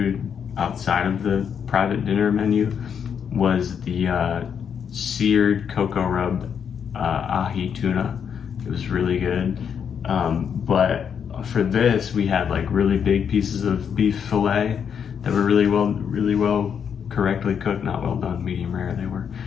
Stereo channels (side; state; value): right; quieter; 7.5 dB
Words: outside of the private dinner menu, was the seared cocoa rub ahi tuna. It was really good. But for this, we had like really big pieces of beef fillet that were really well correctly cooked, not well done, medium rare they were.